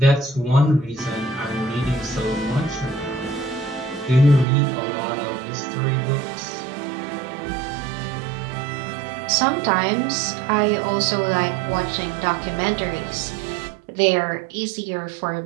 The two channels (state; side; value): drops out; left; at 4.5 s